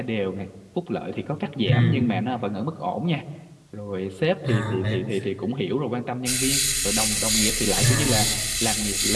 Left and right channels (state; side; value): identical; both; correlation 1.00